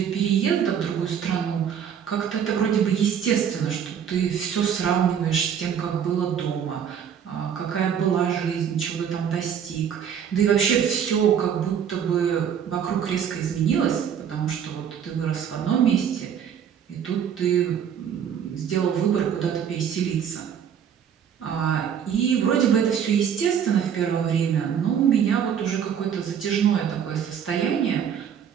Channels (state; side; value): quieter; left; 8.3 dB